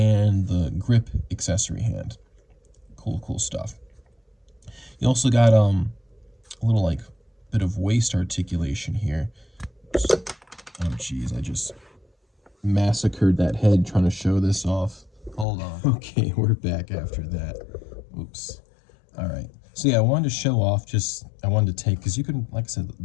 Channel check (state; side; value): drops out; right; at 15.5 s